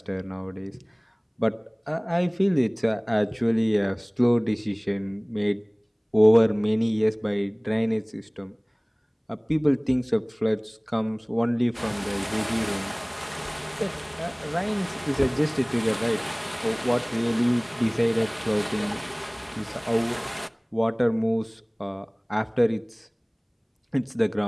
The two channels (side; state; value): both; identical; correlation 1.00